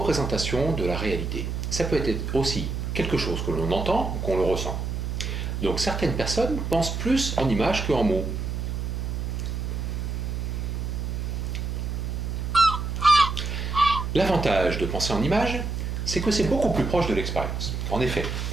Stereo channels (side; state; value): right; noise; hum, 3 dB below the sound